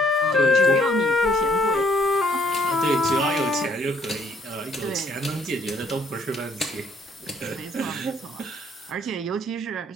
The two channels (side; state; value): both; normal; correlation 0.65